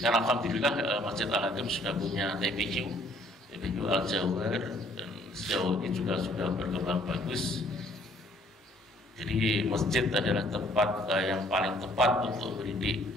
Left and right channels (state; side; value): normal; both; correlation 0.62